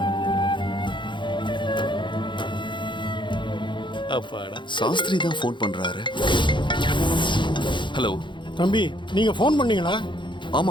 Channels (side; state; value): right; late; 0.23 ms